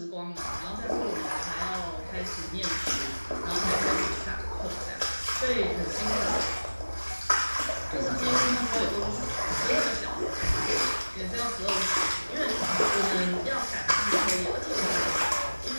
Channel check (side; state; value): both; inverted; correlation -1.00